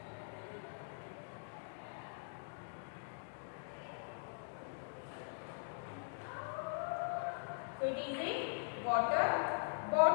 So it is a water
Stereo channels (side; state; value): right; silent; digital silence